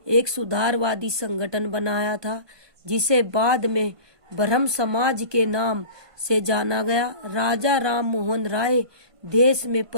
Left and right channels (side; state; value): left; late; 1.5 ms